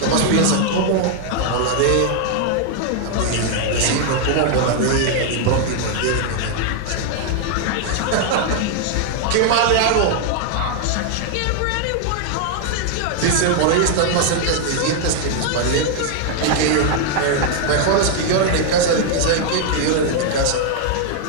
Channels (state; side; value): different; both; correlation 0.00